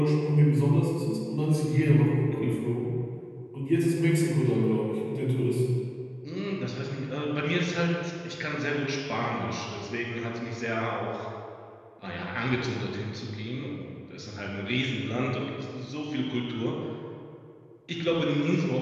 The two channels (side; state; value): both; identical; correlation 1.00